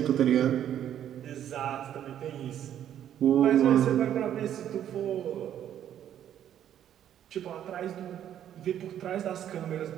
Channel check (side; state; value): left; quieter; 10.5 dB